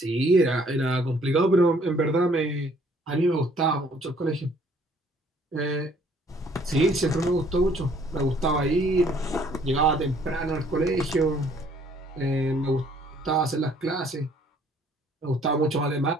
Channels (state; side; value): normal; both; correlation 0.61